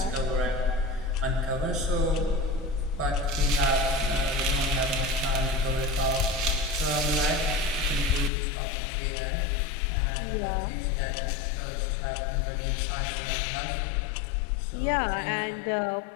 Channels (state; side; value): drops out; right; at 8.3 s